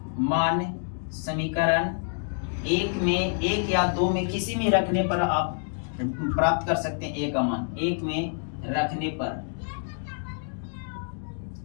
मान समीकरण 1 में 1 या 2 में किसी में रखने पर आप प्राप्त कर सकते हैं। a का मान 1 में रखने पर,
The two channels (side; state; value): right; silent; 60 dB below the other